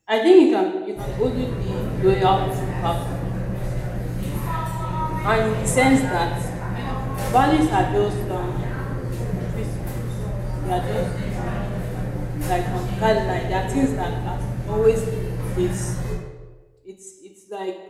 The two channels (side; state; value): both; identical; correlation 1.00